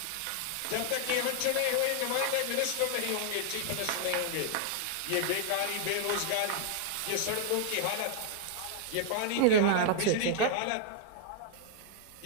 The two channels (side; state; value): both; different; correlation 0.00